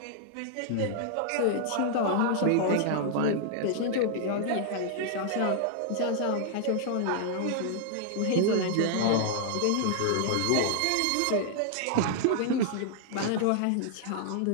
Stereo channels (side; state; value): both; different; correlation -0.01